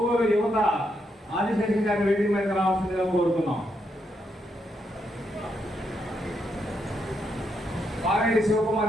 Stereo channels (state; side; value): normal; both; correlation 0.79